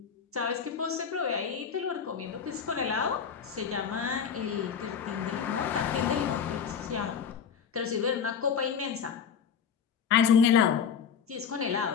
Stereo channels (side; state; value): right; quieter; 7.1 dB